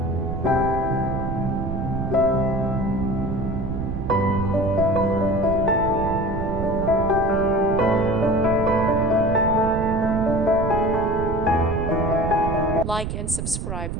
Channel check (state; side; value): noise; right; rumble, 4 dB below the sound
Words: Like and subscribe,